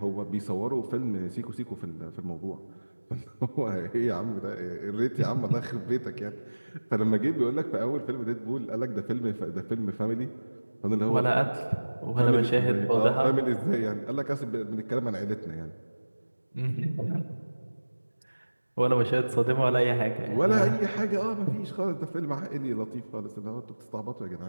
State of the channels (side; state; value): both; inverted; correlation -1.00